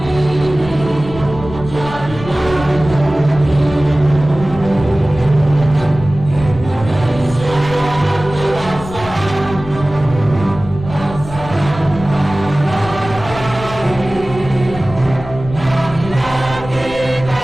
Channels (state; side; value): noise; left; rumble, 12 dB below the sound